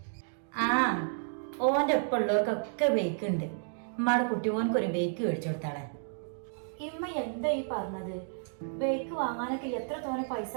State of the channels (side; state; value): left; silent; digital silence